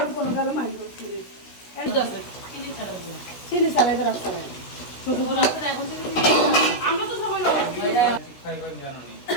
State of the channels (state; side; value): late; right; 16 ms